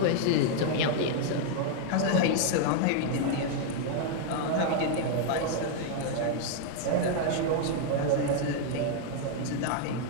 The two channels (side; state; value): both; different; correlation 0.00